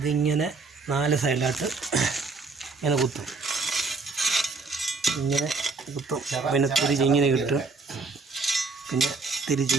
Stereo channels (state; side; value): quieter; left; 4.2 dB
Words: 4 സൈഡിലായിട്ട് ഇങ്ങനെ കുത്തും. ഇങ്ങനെ കുത്തും, പിന്നെ തിരിച്ചിങ്ങനെ കിട്ടും, പിന്നെ